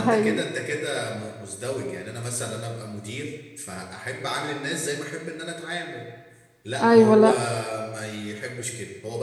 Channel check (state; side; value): identical; both; correlation 1.00